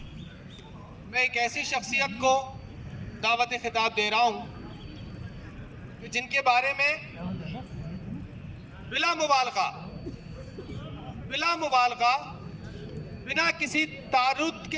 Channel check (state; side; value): identical; both; correlation 1.00